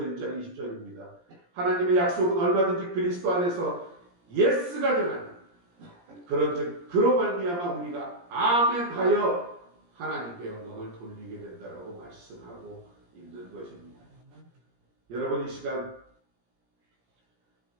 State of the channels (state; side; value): late; left; 17 ms